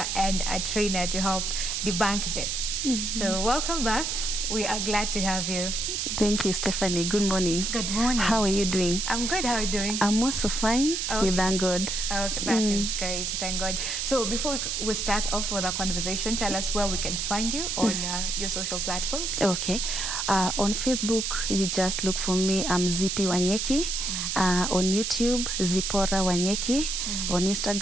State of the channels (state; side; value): noise; right; hiss, 1 dB below the sound